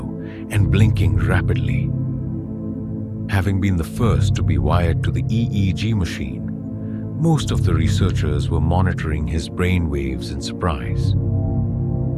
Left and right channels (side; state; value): both; identical; correlation 1.00